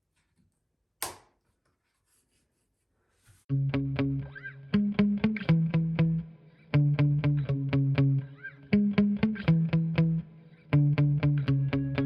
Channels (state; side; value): identical; both; correlation 1.00